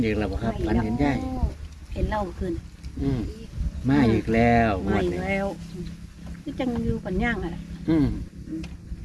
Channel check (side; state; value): both; identical; correlation 1.00